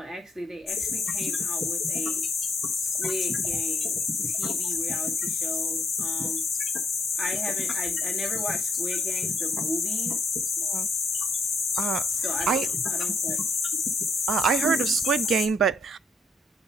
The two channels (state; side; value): normal; both; correlation 0.73